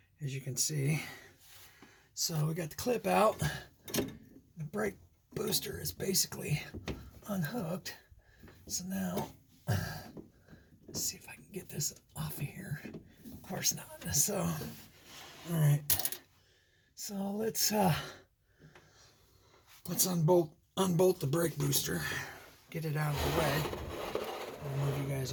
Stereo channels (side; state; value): both; identical; correlation 1.00